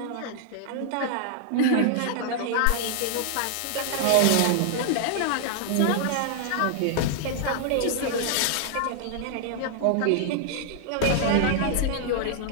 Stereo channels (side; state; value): both; different; correlation 0.00